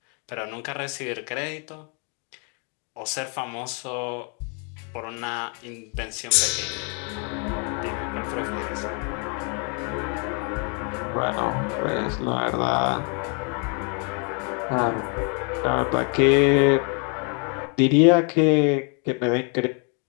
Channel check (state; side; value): quieter; right; 37.4 dB